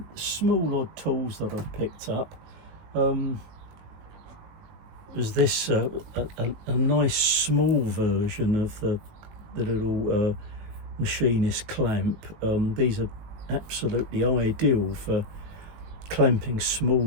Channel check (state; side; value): late; left; 19 ms